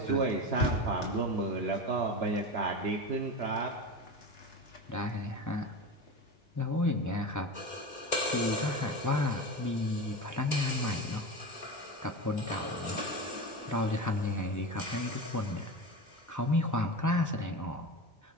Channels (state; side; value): normal; both; correlation 0.25